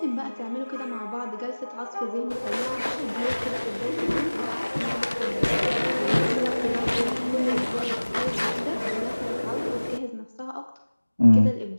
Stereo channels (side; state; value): both; inverted; correlation -1.00